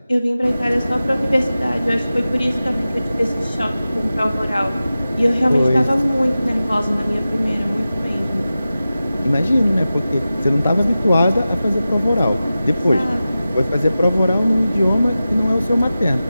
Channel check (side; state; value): both; inverted; correlation -0.94